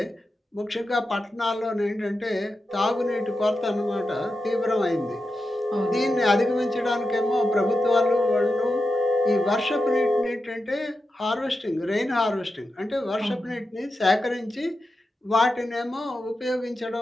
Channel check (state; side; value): normal; both; correlation 0.90